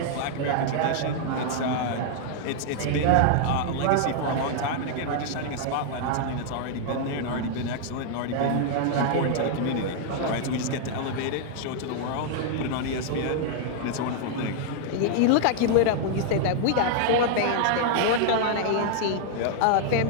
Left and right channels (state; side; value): different; both; correlation -0.01